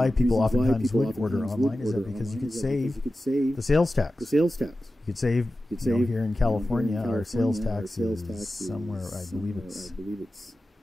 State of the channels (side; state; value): both; normal; correlation 0.94